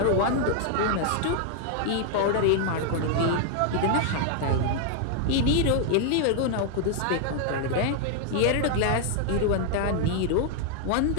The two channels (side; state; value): both; different; correlation 0.00